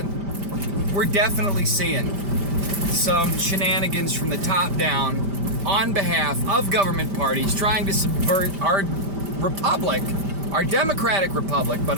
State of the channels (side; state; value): left; late; 5.1 ms